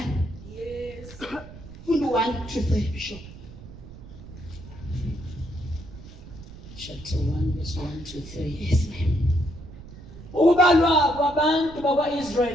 Yes. Funda 1 to 3 Bishop. Chapter 1 verse 1 to 3. Yes ma'am. Ukubalwa kwabantu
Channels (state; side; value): noise; right; rumble, 16 dB below the sound